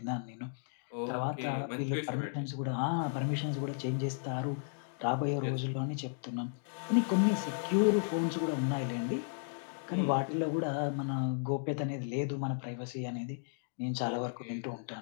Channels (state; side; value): silent; right; digital silence